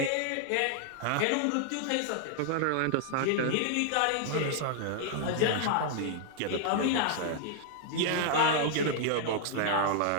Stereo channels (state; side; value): different; both; correlation 0.00